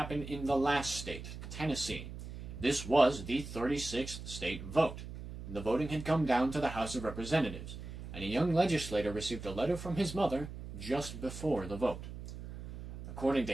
in the last state, Tennessee. This was the 36th state vote. The voting had come down to the House of Representatives, and a young legislator received a letter from his mother just before the vote. According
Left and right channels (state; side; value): noise; right; hum, 10 dB below the sound